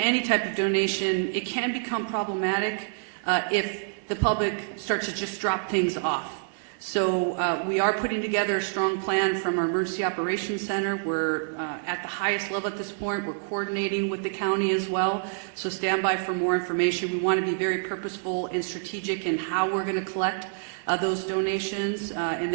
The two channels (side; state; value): left; silent; digital silence